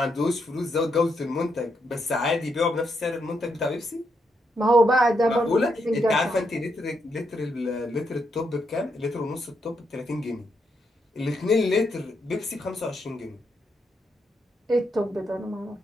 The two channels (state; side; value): normal; both; correlation 0.80